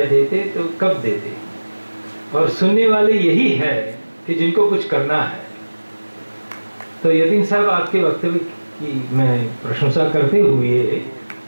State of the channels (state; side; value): inverted; both; correlation -1.00